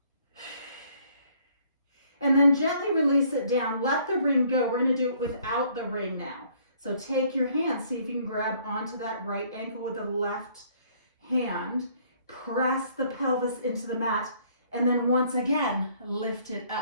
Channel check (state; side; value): inverted; both; correlation -0.62